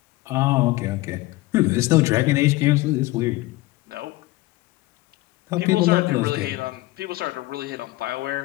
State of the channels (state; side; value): quieter; right; 19.4 dB